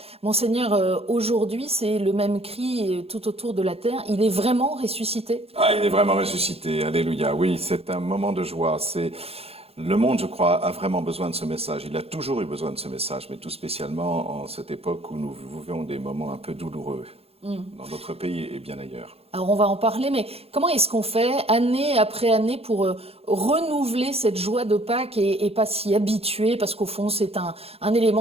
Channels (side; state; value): left; late; 0.29 ms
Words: Monseigneur, aujourd'hui, c'est le même cri tout autour de la terre. Il est vraiment ressuscité? Ah, il est vraiment ressuscité, alléluia. Oui, c'est un moment de joie. Le monde, je crois, a vraiment besoin de ce message. Il a toujours eu besoin de ce message, mais tout spécialement en cette époque où nous vivons des moments un peu douloureux dans notre pays et bien ailleurs. Alors on va en parler, mais comment est-ce qu'on fait année après année pour renouveler cette joie de Pâques et pas s'y habituer, parce qu'au fond c'est un